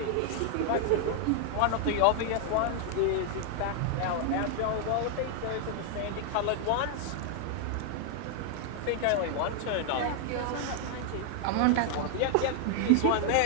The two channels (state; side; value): different; both; correlation 0.00